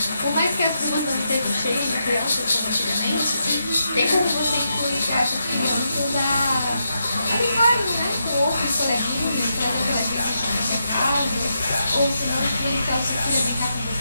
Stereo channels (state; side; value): inverted; both; correlation -0.83